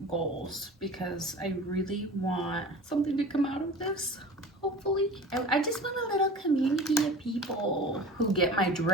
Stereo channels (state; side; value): normal; both; correlation 0.38